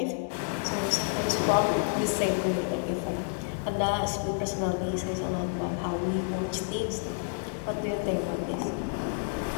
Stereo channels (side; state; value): right; silent; digital silence